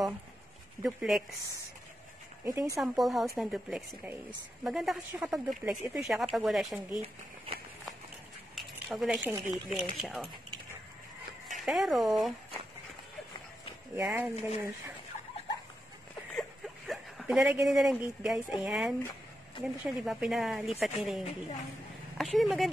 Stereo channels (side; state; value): both; normal; correlation 0.87